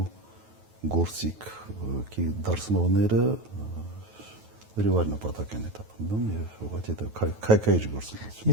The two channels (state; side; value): late; left; 9.3 ms